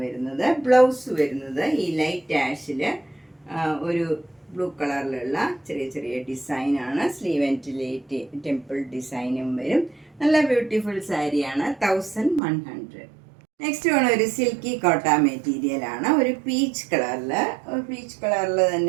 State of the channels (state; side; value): drops out; left; at 12.4 s